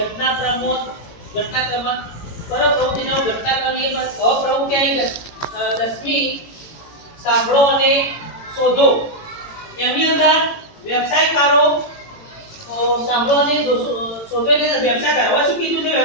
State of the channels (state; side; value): late; right; 18 ms